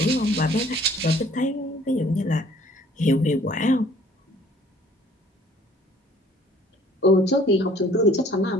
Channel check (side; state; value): both; normal; correlation 0.56